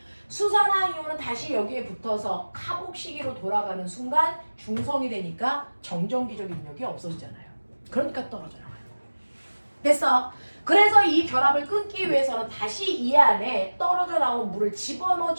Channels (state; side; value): inverted; both; correlation -1.00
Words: 수산화이온은 다시 여기에 붙어서 카복시기로 돌아가는 순간 중성이 되니까 정전기적 인력이 없어지잖아요. 그러니까 떨어져 나와요. 됐어? 그래서 이 결합을 끊기 위해서는 다시 이 안에 떨어져 나온 물을